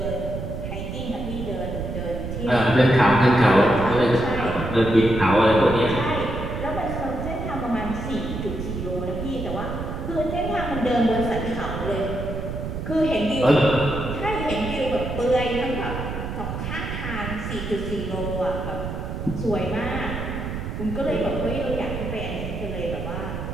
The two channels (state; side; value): noise; right; rumble, 5 dB below the sound